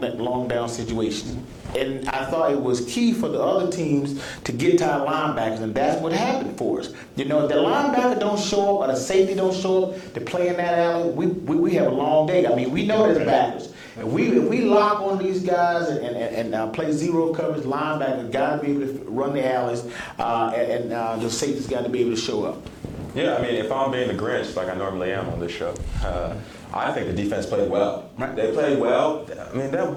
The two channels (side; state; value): both; identical; correlation 1.00